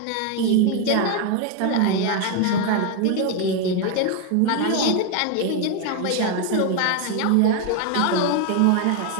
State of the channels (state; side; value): different; both; correlation 0.01